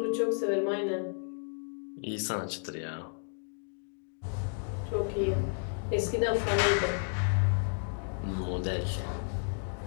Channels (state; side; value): silent; right; digital silence